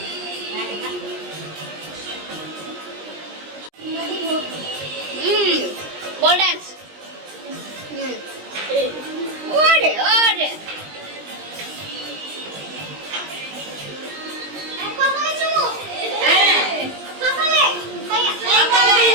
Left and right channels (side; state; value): left; late; 20 ms